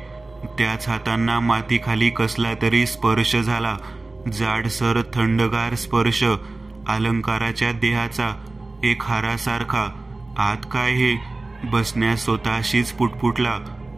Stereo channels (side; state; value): left; quieter; 3.2 dB